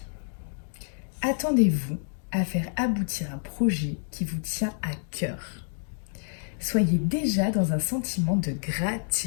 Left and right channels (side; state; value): right; silent; 59 dB below the other